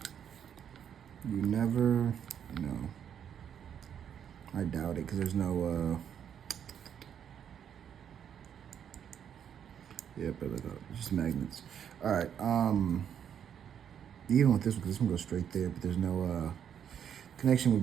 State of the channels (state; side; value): quieter; left; 8.7 dB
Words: You never know. I doubt it, because there's no yep, just magnets. All right, even with this one, because this one goes straight there, but there's no connection